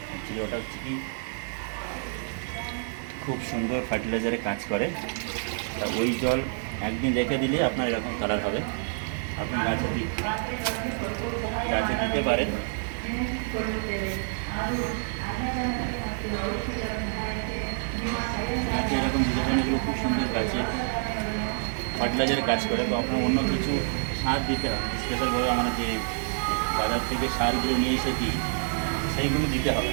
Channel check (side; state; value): left; silent; 60 dB below the other